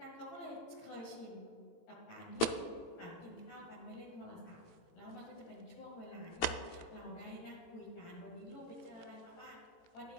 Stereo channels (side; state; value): right; late; 18 ms